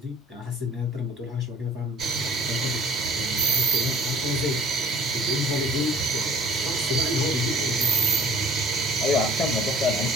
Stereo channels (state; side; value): normal; both; correlation 0.51